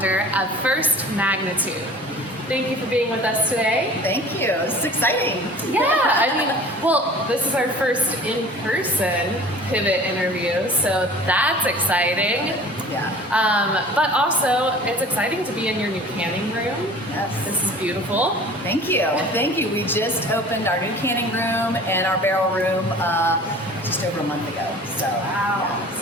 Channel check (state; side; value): normal; both; correlation 0.44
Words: of First Magnitude. Thank you for being with us today. Thank you. This is exciting. Yeah, well, this is our first in-person pivot interview, so that's exciting. Yeah. But also, it's exciting to be in your new canning room. Yes. This is beautiful. Thank you. Thank you. We just opened our new canning room and our barrel room just over a month ago. So, wow.